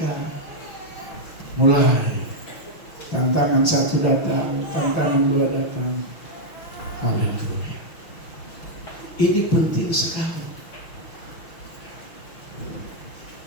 mulai tantangan 1 datang, tantangan 2 datang. Haleluya. Ini penting sekali.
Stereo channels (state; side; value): late; right; 6.1 ms